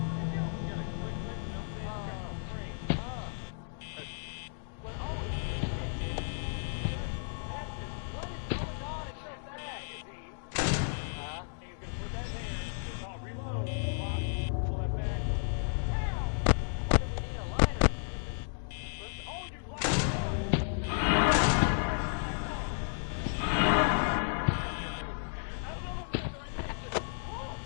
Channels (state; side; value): silent; right; digital silence